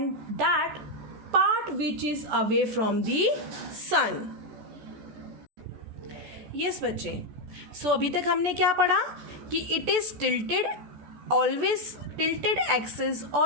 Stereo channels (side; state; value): left; late; 14 ms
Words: that part which is away from the sun. Yes बच्चे, सो अभी तक हमने क्या पढ़ा कि it is tilted, always tilted axis